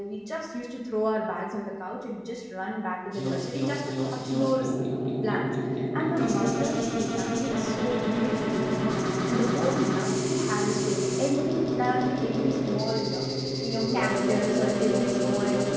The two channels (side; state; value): both; identical; correlation 1.00